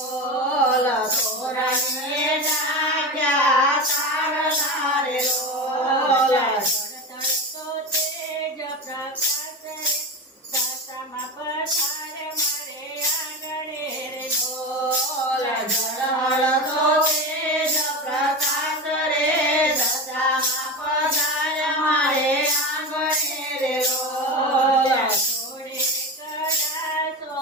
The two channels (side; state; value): both; normal; correlation 0.23